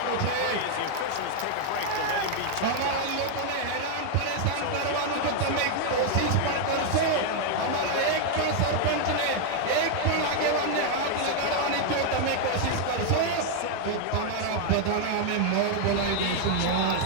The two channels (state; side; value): different; both; correlation 0.00